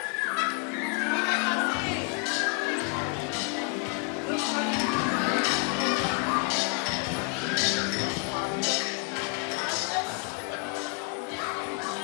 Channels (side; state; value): right; quieter; 33.4 dB